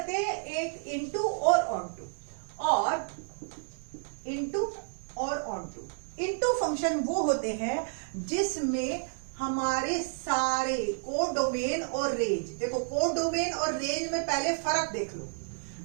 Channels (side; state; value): left; silent; 57 dB below the other